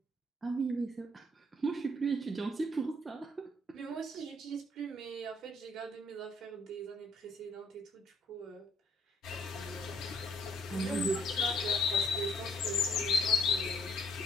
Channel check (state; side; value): normal; both; correlation 0.66